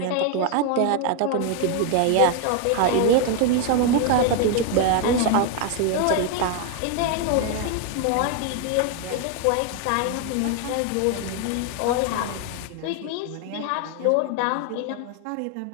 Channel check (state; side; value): different; both; correlation 0.01